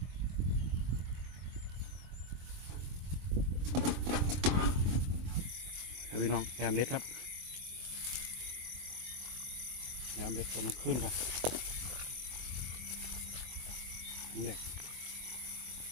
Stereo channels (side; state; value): left; late; 23 ms